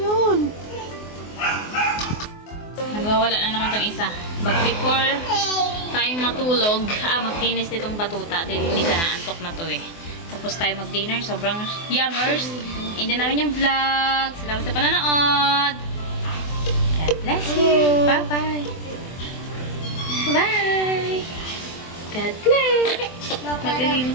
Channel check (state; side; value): late; right; 24 ms